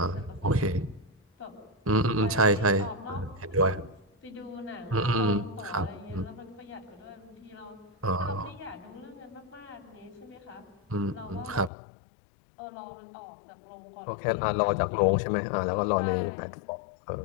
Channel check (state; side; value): drops out; right; at 11.7 s